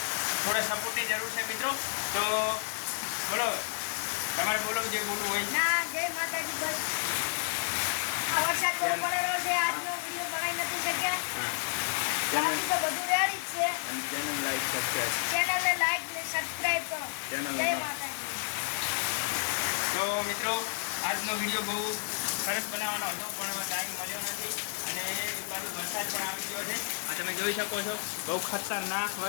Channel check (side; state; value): right; silent; 57 dB below the other